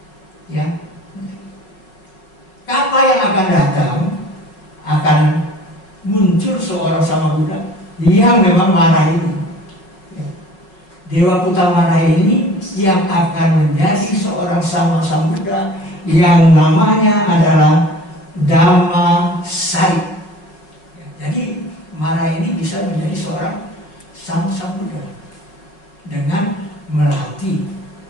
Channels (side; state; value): right; late; 5.3 ms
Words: Ya, kalpa yang akan datang akan muncul seorang sama Buddha yang memang marah ini. Ya. Dewa Kutamara ini yang akan menjadi seorang sama Buddha yang namanya adalah Dhamma Sari. Ya, jadi marah ini bisa menjadi seorang sama Buddha dengan melatih